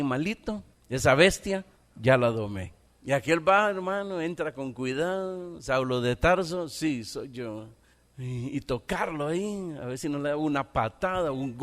esa bestia, ya la domé. Y aquel va, hermano, entra con cuidado. Saulo de Tarso, sí, soy yo. Y tocarlo ahí, a ver si no le da una patada, un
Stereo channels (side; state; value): both; identical; correlation 1.00